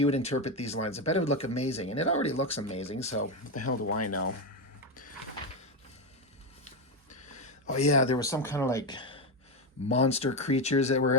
would interpret these lines. I bet it would look amazing, and it already looks amazing, so what the hell do I know? Oh yeah, there was some kind of like monster creatures that were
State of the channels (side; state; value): both; normal; correlation 0.10